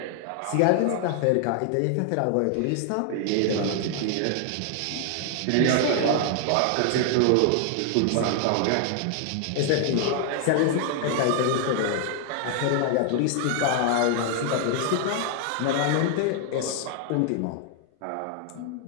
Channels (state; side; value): different; both; correlation 0.00